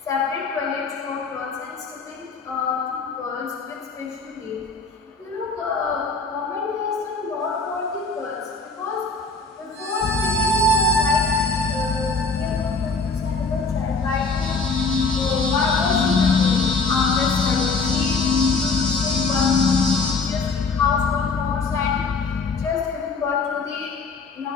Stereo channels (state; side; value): quieter; right; 4.0 dB